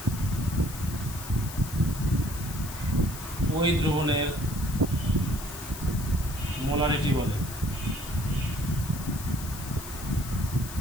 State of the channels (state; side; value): noise; left; hiss, 12 dB below the sound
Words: ওই দ্রবণের মোলারিটি বলে।